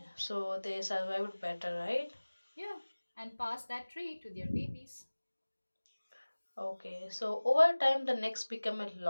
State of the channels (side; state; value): both; inverted; correlation -1.00